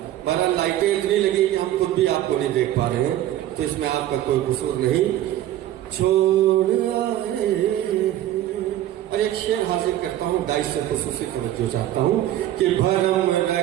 बहरहाल लाइटें इतनी लगी कि हम खुद भी आपको नहीं देख पा रहे हैं, तो इसमें आपका कोई कसूर नहीं। छोड़ आए। और एक शेर हाजिर करता हूँ, गाइस से खुसूसी तवज्जो चाहता हूँ कि भरम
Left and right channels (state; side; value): quieter; left; 13.1 dB